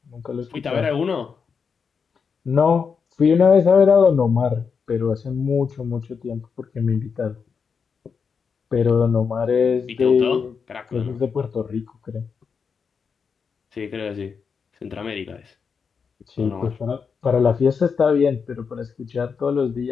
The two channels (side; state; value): right; quieter; 5.9 dB